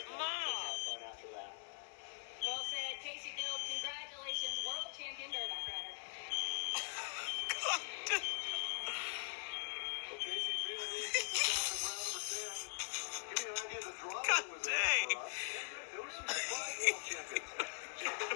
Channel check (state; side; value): silent; right; digital silence